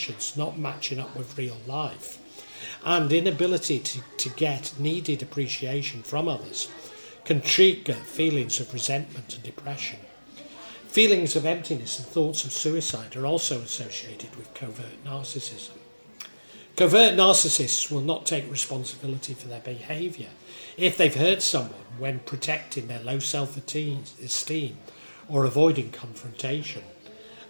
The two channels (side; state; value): both; inverted; correlation -1.00